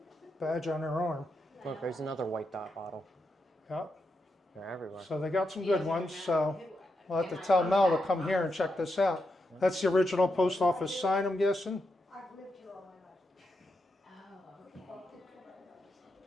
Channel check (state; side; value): normal; both; correlation 0.84